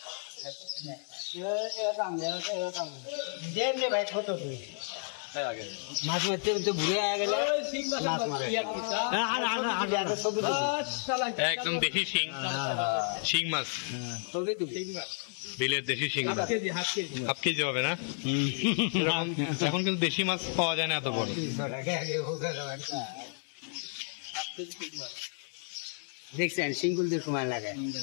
মাছ মারতে তো ঘুরে গেলে একদম দেশি শিং, শিং মাছ, বিলের দেশি শিং মাছ। হাফ কেজি হবে না? এখন কিন্তু দেশি মাছ পাওয়া যায় না এত বড়। দেখছেন সিঙ্গুল দিয়ে সময় লাগে।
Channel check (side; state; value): right; silent; 56 dB below the other